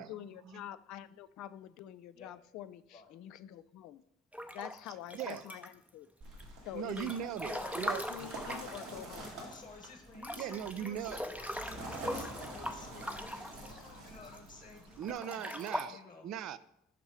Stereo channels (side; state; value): both; normal; correlation 0.48